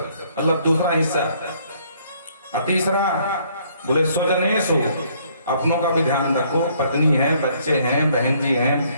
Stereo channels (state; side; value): inverted; both; correlation -0.65